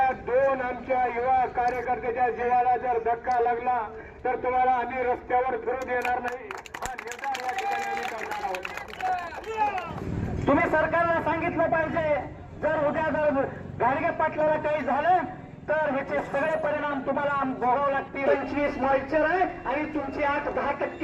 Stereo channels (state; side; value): identical; both; correlation 1.00